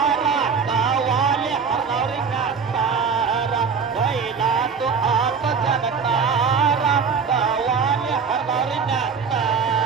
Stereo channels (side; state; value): left; quieter; 5.8 dB